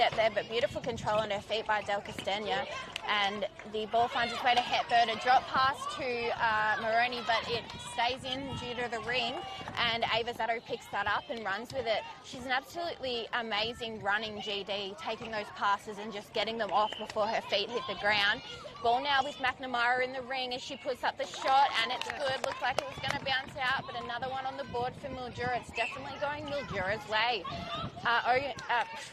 there, but beautiful control on her feet by Del Castagno. And the ball finds its way to Hepburn. A drop pass to Moroney, but it stays in due to the ring. And Ava Zato picks that up and runs with it. She's an absolutely amazing running GD, taking those passes and just getting them off before her feet hit the ground. Ball now with McNamara in the ring as she puts up the shot, and it's good. Looks like it was going to bounce out, but another one on the board for Mildura. It's definitely going Mildura's way.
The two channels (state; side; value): identical; both; correlation 1.00